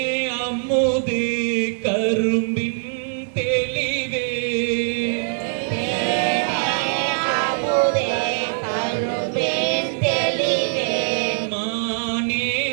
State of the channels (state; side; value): silent; left; digital silence